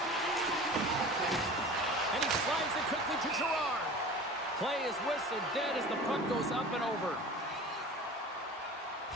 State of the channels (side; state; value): both; normal; correlation 0.38